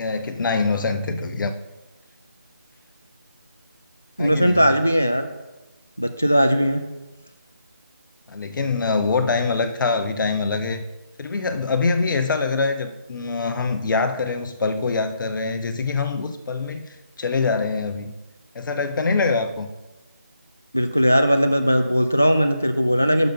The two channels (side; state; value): both; inverted; correlation -0.79